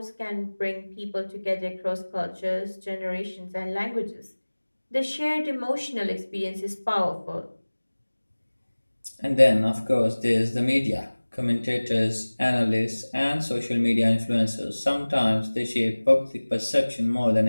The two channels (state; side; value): inverted; both; correlation -1.00